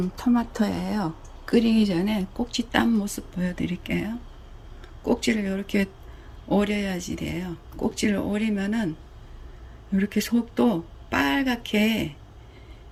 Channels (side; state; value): both; identical; correlation 1.00